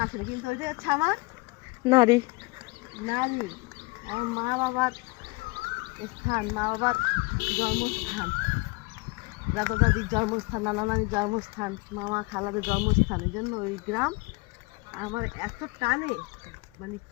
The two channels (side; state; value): right; quieter; 25.9 dB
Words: আসলে, কিন্তু ওই যে হচ্ছে আমার নারী নারী, আমার মা বাবার স্থান, মা বাবার জন্মস্থান, দাদা দাদির জন্মস্থান, নানা নানির জন্মস্থান, মামা খালাদের জন্মস্থান। এই জন্য ওই গ্রাম আমার এত টানে, মানে